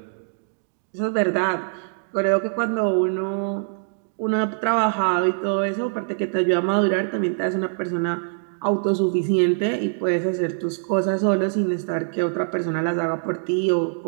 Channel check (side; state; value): left; silent; digital silence